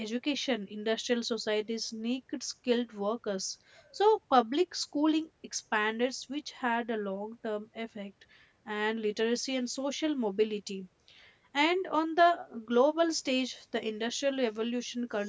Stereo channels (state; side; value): identical; both; correlation 1.00